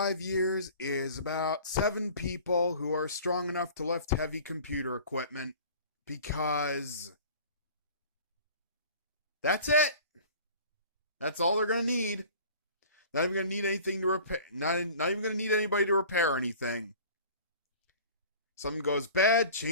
years is about 7 people who are strong enough to lift heavy computer equipment. Because that's it. That's all they're going to need. Not even going to need anything to repair. Not even going to need anybody to repair anything. Something goes bad,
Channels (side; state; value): both; inverted; correlation -0.44